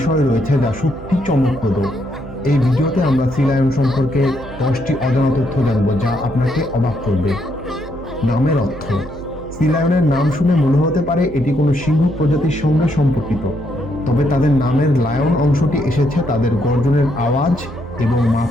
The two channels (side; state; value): right; noise; hum, 16 dB below the sound